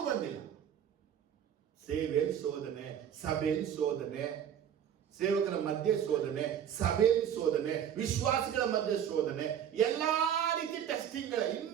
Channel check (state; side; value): quieter; left; 9.3 dB